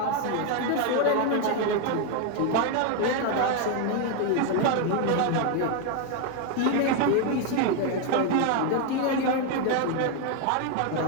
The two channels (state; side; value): different; both; correlation 0.01